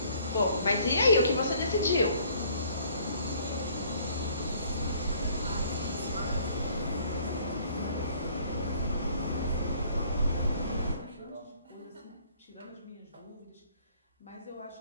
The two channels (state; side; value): inverted; both; correlation -0.59